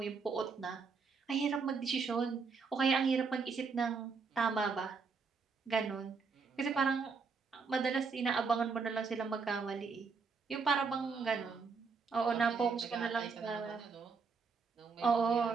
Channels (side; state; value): left; quieter; 5.1 dB